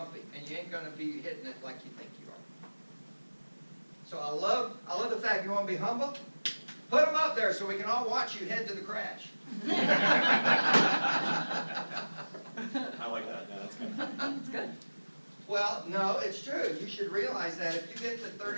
and you ain't going to be hitting it like you think you are. So I love the fact you want to be humble. Put them up there so we can all watch you head to the crash. I like that. Yeah, that's good. That's good. Well, no, it's true. You should realize that if you get to 30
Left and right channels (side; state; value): both; inverted; correlation -1.00